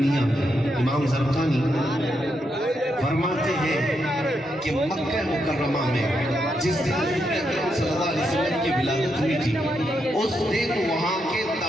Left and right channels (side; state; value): both; normal; correlation 0.81